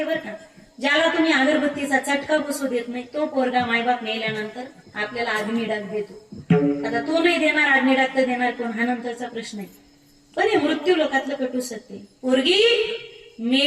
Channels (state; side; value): identical; both; correlation 1.00